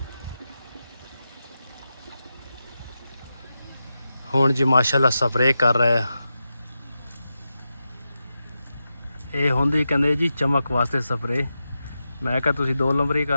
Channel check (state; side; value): inverted; both; correlation -0.90